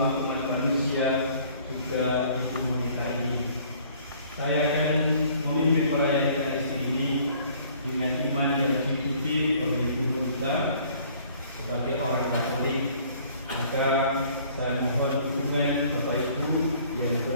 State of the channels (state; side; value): inverted; both; correlation -0.56